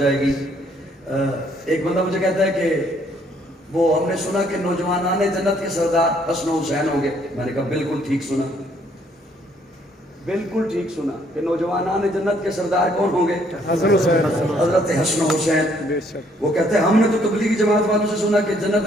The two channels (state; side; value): normal; both; correlation 0.66